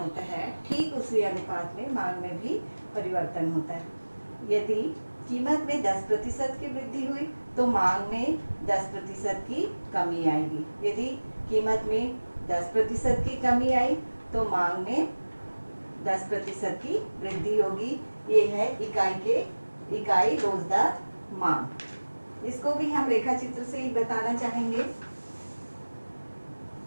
है ठीक उसी अनुपात में मांग में भी परिवर्तन होता है। यदि कीमत में 10% की वृद्धि हुई तो मांग में 10% की कमी आएगी। यदि कीमत में 10% की कमी आई तो मांग में 10% की वृद्धि होगी। ये है इकाई रोजदार मांग। इसको भी हम रेखा चित्र से ही बताना चाहेंगे।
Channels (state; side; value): inverted; both; correlation -1.00